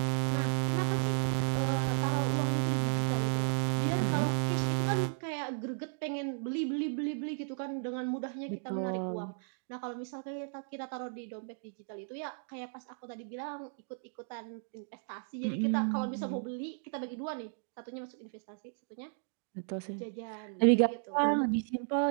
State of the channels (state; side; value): silent; left; digital silence